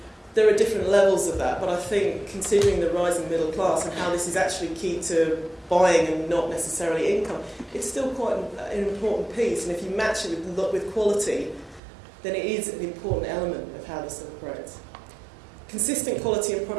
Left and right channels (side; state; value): left; drops out; at 11.8 s